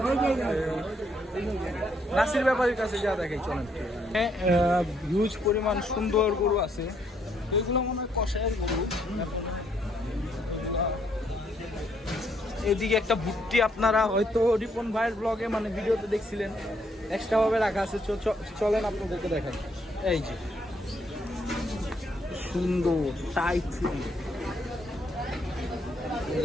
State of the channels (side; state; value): both; normal; correlation 0.72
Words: নাসির ব্যাপারীর কাছে যা দেখে চলেন। হ্যাঁ, হিউজ পরিমাণ সুন্দর গরু আছে, তো এগুলো মনে হয় কষায়ের গরু। এদিকে একটা ভুট্টি আপনারা হয়তো রিপন ভাইয়ের ব্লগে মানে ভিডিওতে দেখছিলেন, এক্সট্রা ভাবে রাখা আছে। চলেন আপনাদেরকে দেখাই। এই যে সুন্দর টাইট ফিটিং, এই